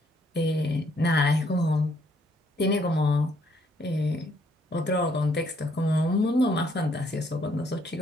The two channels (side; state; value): both; normal; correlation 0.68